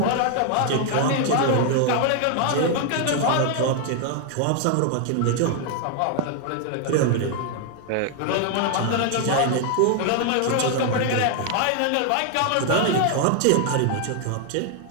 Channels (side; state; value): both; different; correlation 0.00